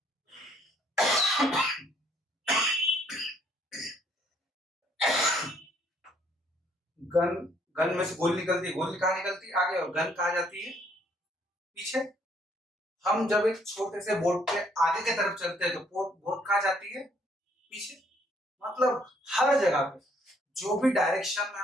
गन, गन में से गोली निकलती है, गोली कहाँ निकलती है, आगे, और गन कहाँ जाती है, पीछे। हम जब एक छोटे से बोट के आगे की तरफ चलते हैं तो बोट कहाँ जाती है, पीछे। मतलब हर जगह पे जो भी डायरेक्शन में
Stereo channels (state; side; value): normal; both; correlation 0.66